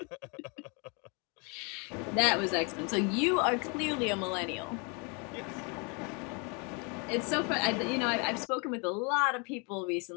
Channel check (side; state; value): right; quieter; 33.1 dB